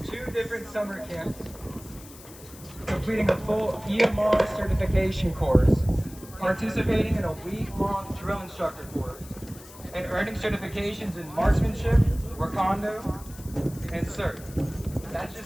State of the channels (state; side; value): noise; left; hiss, 19 dB below the sound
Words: 2 different summer camps, completing a full EMR certification course, participating in a week-long drill instructor course, and earning certifications in marksmanship, Wakanda, and CERT. That